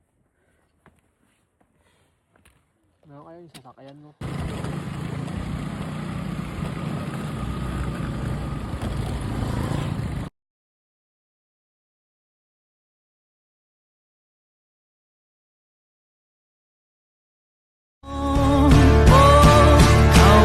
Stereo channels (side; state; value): both; identical; correlation 1.00